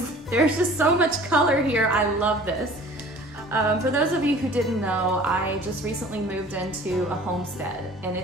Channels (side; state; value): both; normal; correlation 0.47